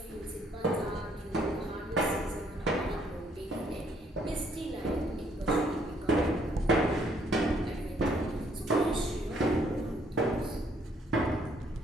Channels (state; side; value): normal; both; correlation 0.67